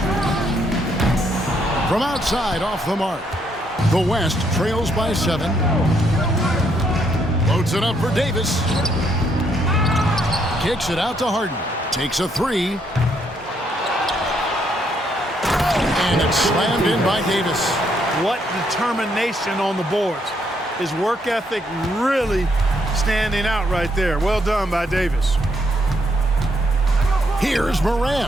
From outside, off the mark. The West trails by 7. Loads it up for Davis. Kicks it out to Harden. Takes a three. And it's slammed in by Davis. What determination on the boards. His work ethic really standing out right there. Well done by Davis. Here's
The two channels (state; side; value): normal; both; correlation 0.73